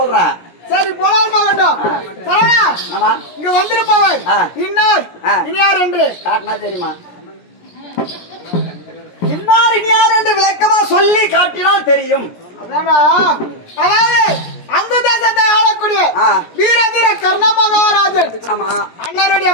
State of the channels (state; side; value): late; right; 17 ms